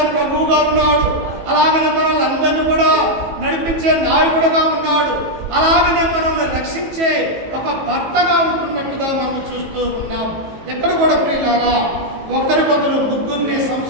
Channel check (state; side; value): late; left; 18 ms